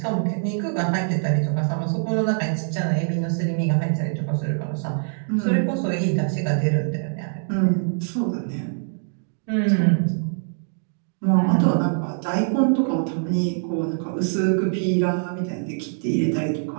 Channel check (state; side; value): silent; left; digital silence